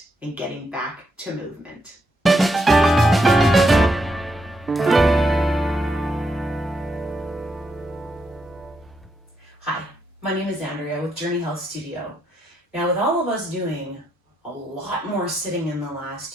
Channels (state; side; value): normal; both; correlation 0.80